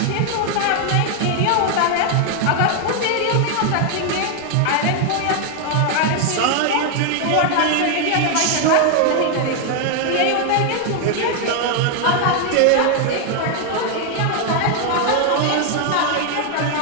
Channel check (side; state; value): both; different; correlation 0.00